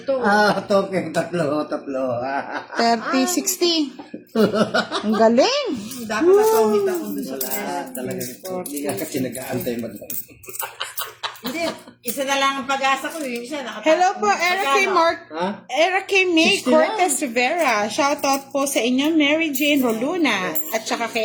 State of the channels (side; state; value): both; identical; correlation 1.00